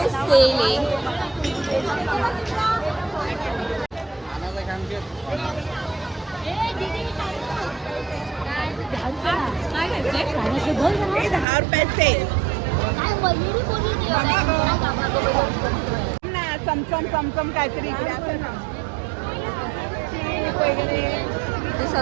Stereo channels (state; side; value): drops out; left; at 11.5 s